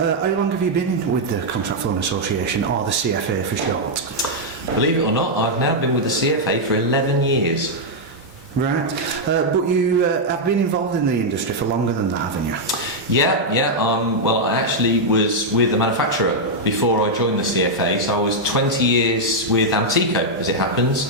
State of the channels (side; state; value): both; normal; correlation -0.03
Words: long have you been with the Contract Flooring Association, or the CFA for short? Believe it or not, I've now been with the CFA for 11 years. Right, but you have been involved in the industry for longer than that, haven't you? Yeah. Well, I actually was with the manufacturer before I joined the CFA, so I was 20 years with Antico, as it